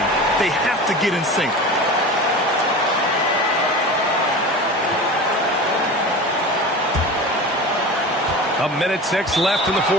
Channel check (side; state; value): both; normal; correlation 0.32